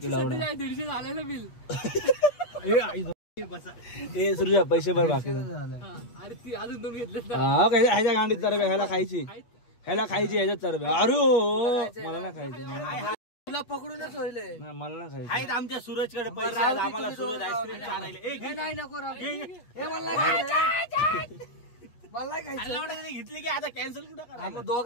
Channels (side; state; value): right; late; 8.4 ms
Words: तुला 150 झालंय ना बिल. सुरजा पैसे भर बाकी. अरे ती अजून 2 घेतले. ह्याच्या गांडीत तर ह्याला खायची. ह्याला खायची ह्याच्यात चरबी. अरे हो, मला ना खायची. तुला पकडूनच होईल. नाही, मला ना खायची. आहेत आमच्या सूरजकडे पैसे आहेत, आम्हाला सूरज आईस्क्रीम चारायले. नाही नको मला घेतली की आता कॅन्सल कुठं करा. मग